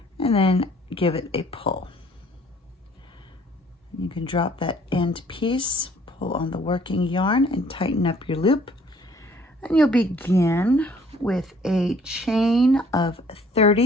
and then give it a pull. You can drop that end piece, pull on the working yarn, and tighten up your loop. And you'll begin with a chain of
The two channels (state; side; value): normal; both; correlation 0.58